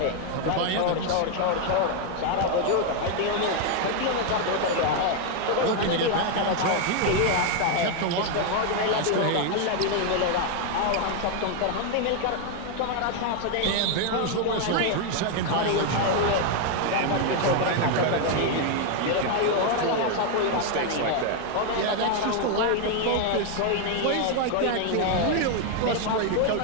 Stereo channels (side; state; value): both; different; correlation 0.01